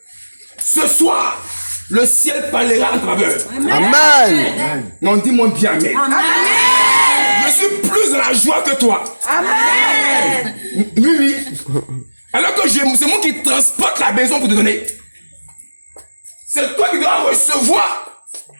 ce soir, le ciel parlera en travers. Amen. Non, dis-moi bien amen. Amen. la joie que toi. Amen. Oui, oui. Alors que c'est moi qui transporte la maison pour te donner. C'est toi qui dois recevoir.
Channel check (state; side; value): inverted; both; correlation -1.00